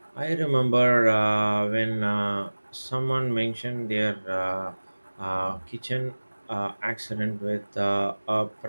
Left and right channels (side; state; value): both; inverted; correlation -1.00